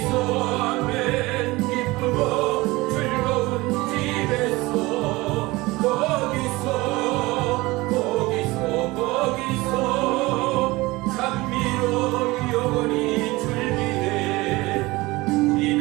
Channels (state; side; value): quieter; left; 21.3 dB